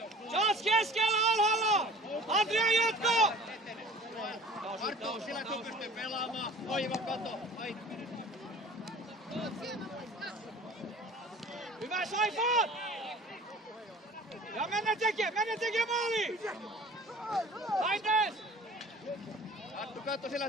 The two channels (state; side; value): normal; both; correlation 0.46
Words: Charles keskellä alhaalla! Adria jatko! Arttu, sillä kun pystyy pelaamaan. Oiva kato. Hyvä Saifan! Ja mennä tekemään maaliin! Laites! Arttu, katso sillä,